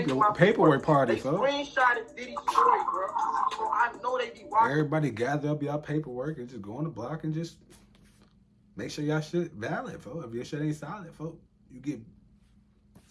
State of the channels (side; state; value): both; identical; correlation 1.00